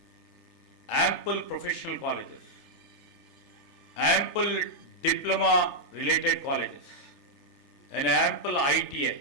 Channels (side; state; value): right; late; 3.4 ms